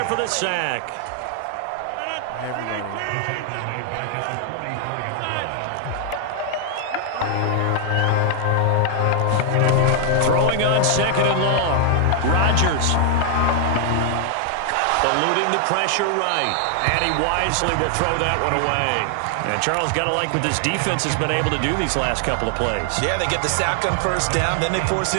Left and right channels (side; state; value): both; different; correlation 0.00